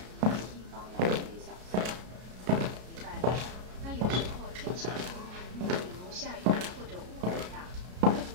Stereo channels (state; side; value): late; left; 33 ms